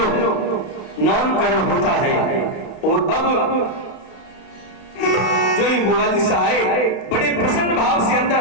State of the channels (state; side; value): late; right; 32 ms